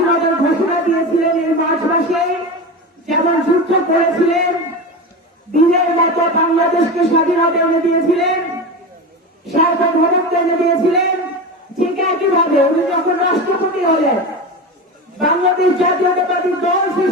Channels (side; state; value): both; normal; correlation 0.24